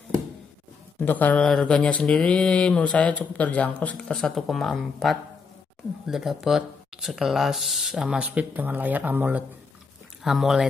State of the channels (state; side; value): quieter; right; 5.1 dB